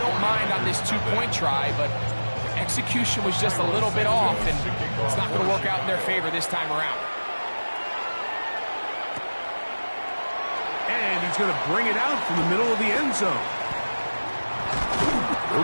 don't mind on this 2-point try, but execution was just a little bit off, and it's not going to work out in their favor this time around. And he's going to bring it out from the middle of the end zone.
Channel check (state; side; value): inverted; both; correlation -1.00